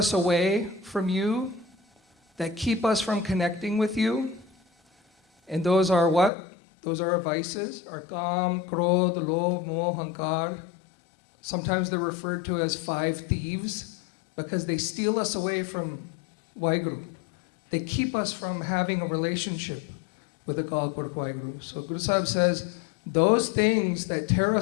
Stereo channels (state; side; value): drops out; right; at 6.3 s